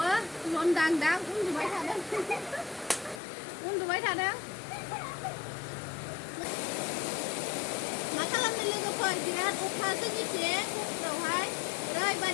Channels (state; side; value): drops out; right; at 3.2 s